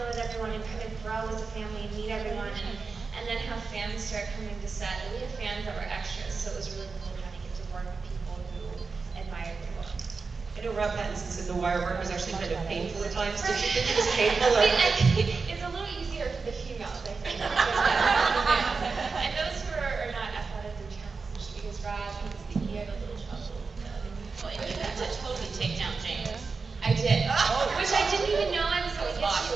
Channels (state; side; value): quieter; left; 4.6 dB